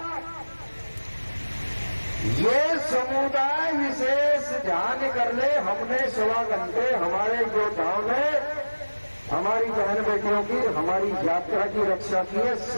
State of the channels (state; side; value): inverted; both; correlation -1.00